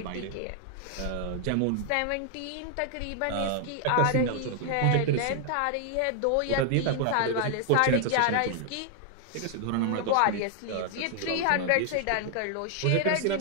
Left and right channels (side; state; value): both; different; correlation 0.00